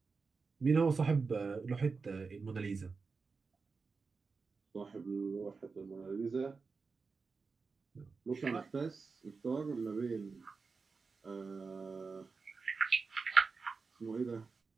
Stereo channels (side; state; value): left; quieter; 4.6 dB